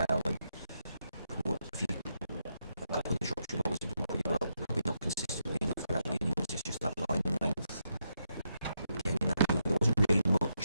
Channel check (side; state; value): both; inverted; correlation -0.82